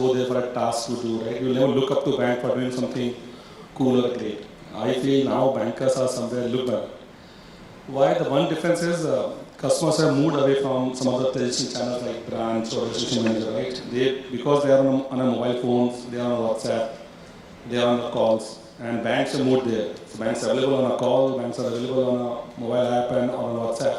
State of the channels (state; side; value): identical; both; correlation 1.00